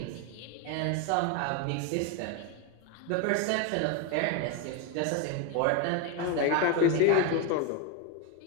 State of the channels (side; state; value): both; different; correlation 0.02